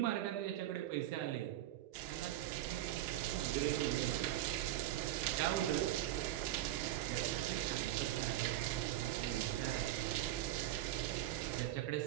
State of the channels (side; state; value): left; quieter; 13.7 dB